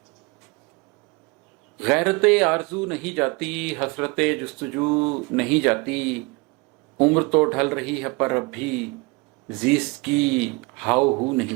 गैरत आरज़ू नहीं जाती, हसरत जुस्तजू नहीं जाती। उम्र तो ढल रही है पर अब भी ज़ीस्त की हाव हू नहीं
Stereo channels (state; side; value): quieter; left; 26.7 dB